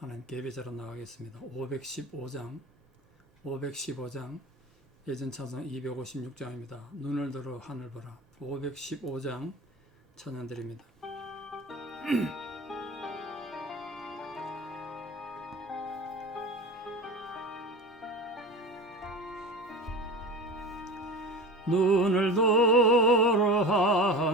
예배자로 나가겠습니다. 515장 예전 찬송 256장입니다. 눈을 들어 하늘 보라. 515장 찬양 드립니다. 눈을 들어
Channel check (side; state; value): both; normal; correlation 0.32